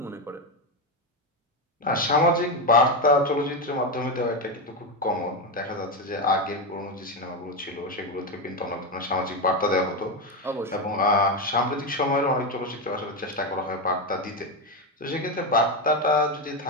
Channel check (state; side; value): normal; both; correlation 0.11